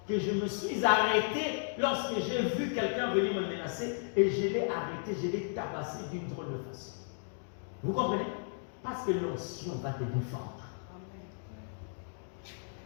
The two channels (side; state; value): right; silent; digital silence